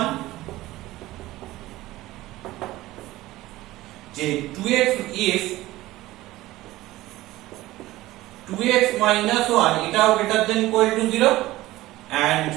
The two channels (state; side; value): quieter; left; 17.3 dB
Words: যে 2x if 2x - 1 এটাও greater than equal to 0 and